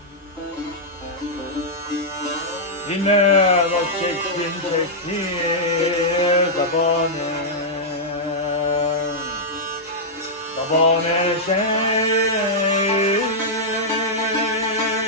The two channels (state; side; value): normal; both; correlation -0.08